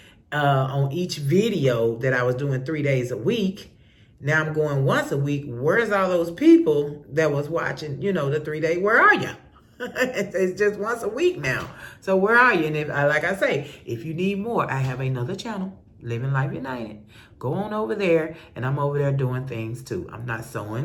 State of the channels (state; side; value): identical; both; correlation 1.00